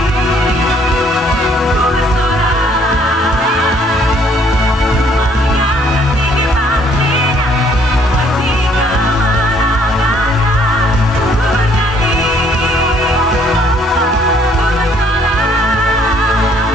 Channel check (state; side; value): normal; both; correlation 0.63